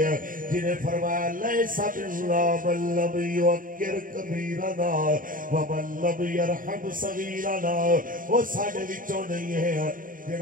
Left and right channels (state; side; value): late; left; 0.40 ms